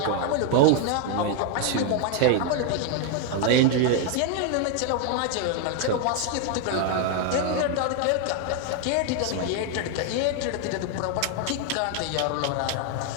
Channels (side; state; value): both; different; correlation 0.00